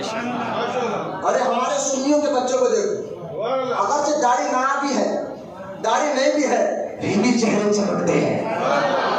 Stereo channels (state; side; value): identical; both; correlation 1.00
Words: ارے ہمارے سنیوں کے بچوں کو دیکھو، اگرچہ داڑھی نہ بھی ہے، داڑھی نہیں بھی ہے، پھر بھی چہرے چمکتے ہیں.